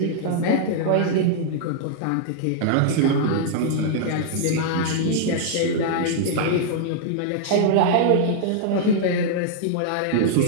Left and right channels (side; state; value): both; different; correlation -0.01